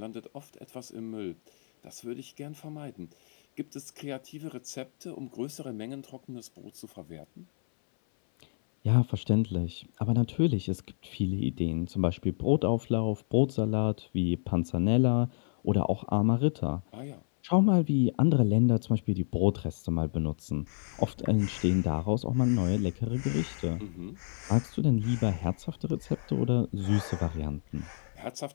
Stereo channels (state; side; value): silent; right; 58 dB below the other